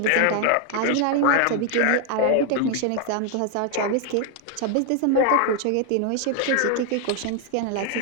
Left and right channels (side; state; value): both; different; correlation 0.00